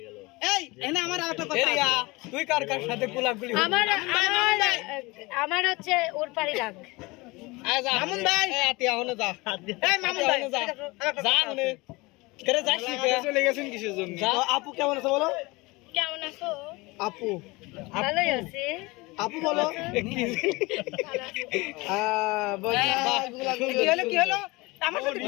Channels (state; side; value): quieter; right; 23.6 dB